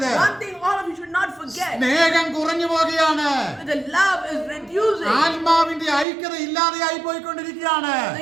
One thing all of you should not forget. സ്നേഹം കുറഞ്ഞു പോകുകയാണ്. The love is reducing. ആത്മാവിന്റെ ഐക്യത ഇല്ലാതെയായി പോയിക്കൊണ്ടിരിക്കുകയാണ്.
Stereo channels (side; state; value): left; drops out; at 6.1 s